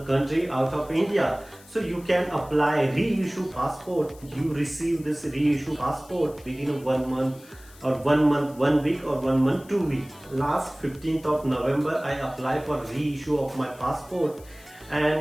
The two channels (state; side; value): noise; left; hiss, 24 dB below the sound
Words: country out of India. So you can apply reissue passport. You receive this reissue passport within 1 month or 1 month, 1 week or 1 month, 2 weeks. Last 15th of November I applied for reissue of my passport,